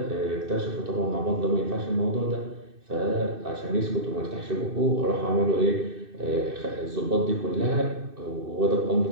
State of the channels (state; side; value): late; left; 2.6 ms